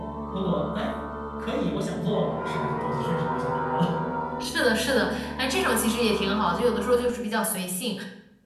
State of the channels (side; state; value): both; identical; correlation 1.00